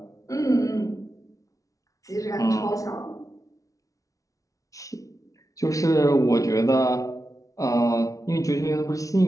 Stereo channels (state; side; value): late; right; 0.17 ms